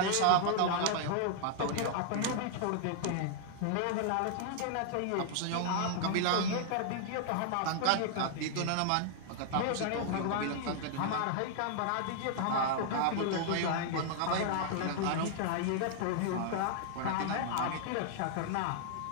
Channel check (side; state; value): both; different; correlation -0.01